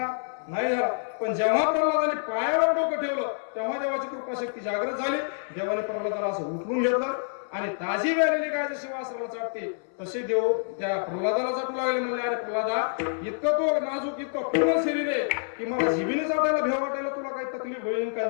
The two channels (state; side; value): silent; right; 60 dB below the other